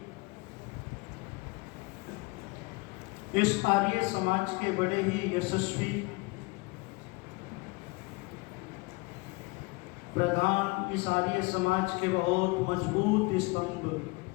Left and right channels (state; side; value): quieter; right; 25.5 dB